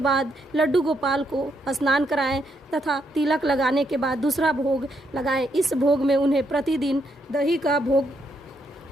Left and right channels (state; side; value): normal; both; correlation 0.77